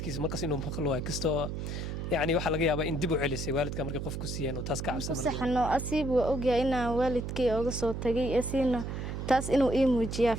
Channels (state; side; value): noise; right; hum, 4 dB below the sound